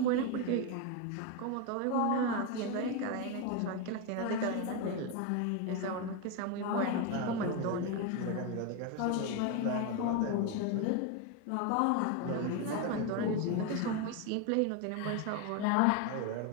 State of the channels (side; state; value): both; different; correlation 0.02